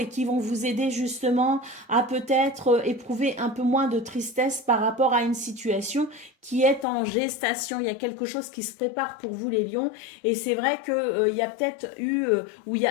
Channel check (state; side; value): drops out; right; at 6.9 s